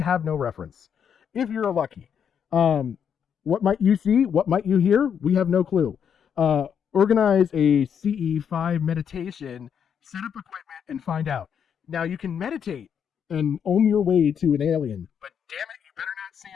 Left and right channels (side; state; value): right; quieter; 7.8 dB